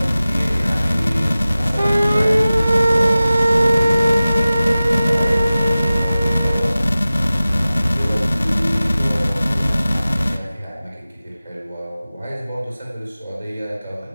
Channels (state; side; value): inverted; both; correlation -0.96